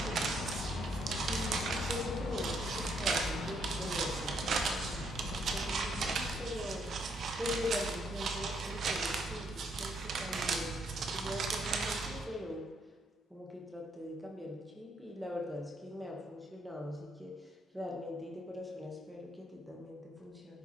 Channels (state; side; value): normal; both; correlation 0.73